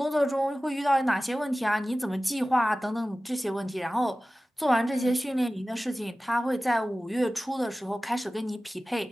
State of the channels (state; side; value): normal; both; correlation 0.96